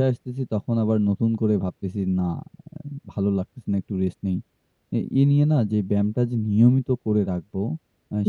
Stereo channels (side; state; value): both; identical; correlation 1.00